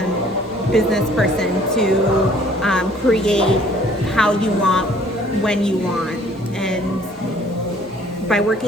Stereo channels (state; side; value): normal; both; correlation 0.57